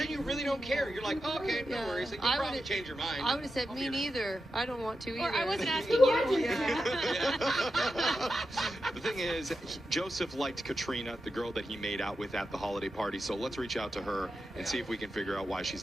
you really don't care. You're like, oh, okay, no Yeah. worries. Like, you I probably would've- change your mind. I would have said, me neither. I don't want to either. Or I wasn't asking you. The thing is, Joseph liked Katrina, the girl that he made out with at the holiday party. So let's reach out to her and see if we can figure out why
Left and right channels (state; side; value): normal; both; correlation 0.89